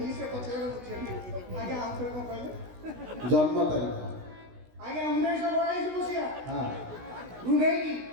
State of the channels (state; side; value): late; left; 16 ms